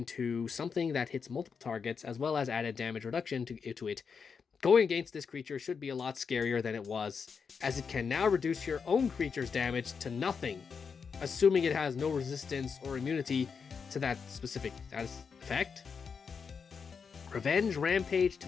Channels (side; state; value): right; quieter; 5.9 dB